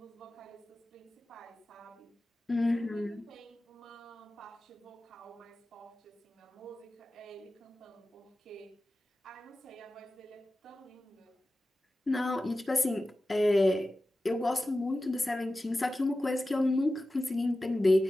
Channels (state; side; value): normal; both; correlation 0.94